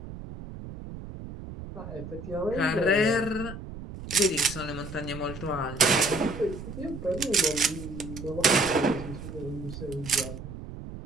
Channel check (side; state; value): right; noise; rumble, 11 dB below the sound